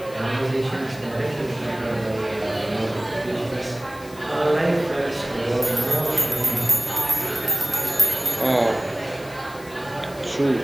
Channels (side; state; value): left; noise; hiss, 20 dB below the sound